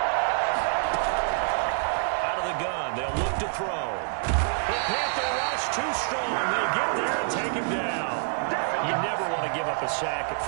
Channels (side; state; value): left; silent; 60 dB below the other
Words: Out of the gun, they'll look to throw. The Panther rush too strong. They get there and take him down. You never want to give up a sack.